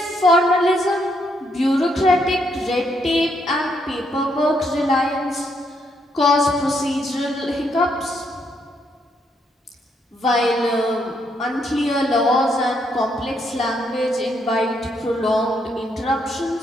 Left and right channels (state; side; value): normal; both; correlation 0.75